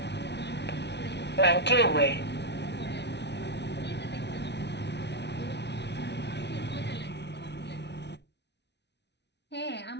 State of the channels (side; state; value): right; late; 0.50 ms